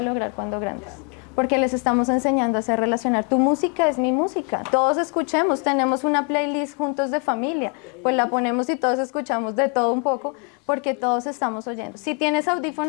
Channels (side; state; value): right; quieter; 37.4 dB